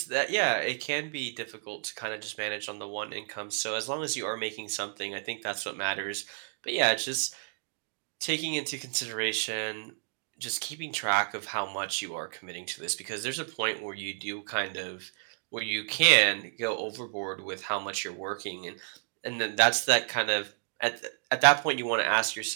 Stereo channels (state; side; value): silent; left; digital silence